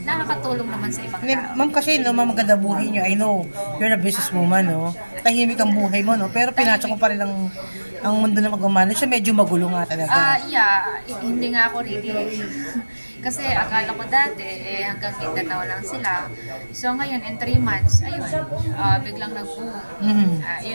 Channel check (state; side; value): inverted; both; correlation -1.00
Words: nakakatulong naman sa ibang tao. Ma'am, kasi maganda buhay niyo. I know, you're a businesswoman, no? Tahimik ang buhay mo, no? Pero pinasok ko pa rin ang mundo na mag-manage. Medyo magulo nga talaga. Hindi nga ako really. Kasi akala ko dati, hanggang Mindanao lang sila. So ngayon, in 3 months, ayun, biglang nag-boom.